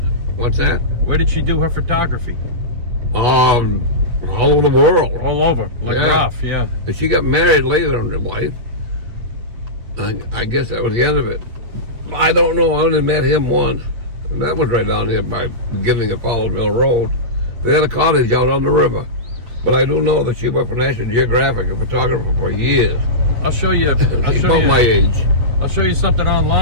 What's that? Where did she do her photography? All over the world. All over. Like Yeah. Ralph, yeah. But she got married later in her life. I guess that was the end of it. I don't know. I only met him once. And that was right down here by the beginning of Fowlerville Road. They had a cottage out on the river. But I do know that she worked for National Geographic, a photographer for years. I'll show you. She's about my age. I'll show you something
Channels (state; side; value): late; left; 8.2 ms